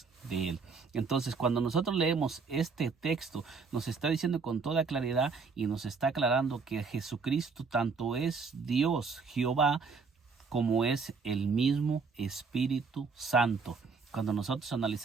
de Él. Entonces, cuando nosotros leemos este texto, nos está diciendo con toda claridad y nos está aclarando que Jesucristo tanto es Dios, Jehová, como es el mismo Espíritu Santo. Cuando nosotros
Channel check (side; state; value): left; quieter; 5.0 dB